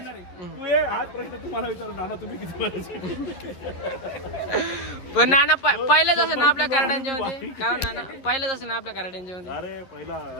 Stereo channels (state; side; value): late; right; 11 ms